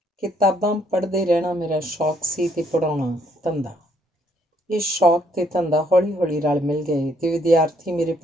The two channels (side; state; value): both; normal; correlation 0.69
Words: किताबां पढ़ते रहना मेरा शौक सी ते पढ़ाउणा धंधा। ये शौक ते धंधा हौली हौली रल मिल गए ते विद्यार्थी मेरे